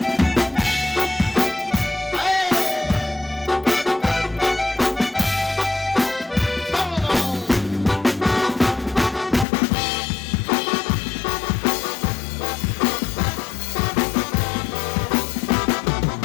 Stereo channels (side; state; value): right; drops out; at 9.5 s